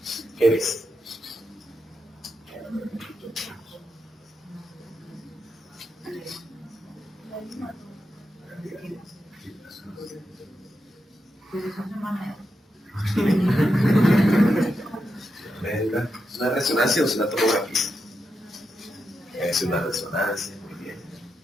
¿Qué ves? ¿Es una resonancia o es una tomografía? Es una resonancia, muy bien.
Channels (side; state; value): both; normal; correlation 0.86